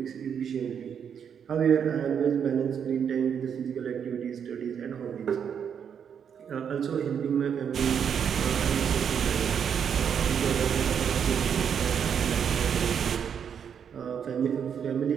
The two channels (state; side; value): quieter; left; 7.7 dB